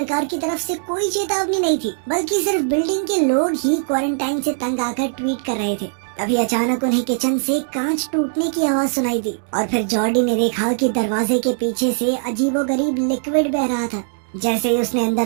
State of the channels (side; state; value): left; silent; digital silence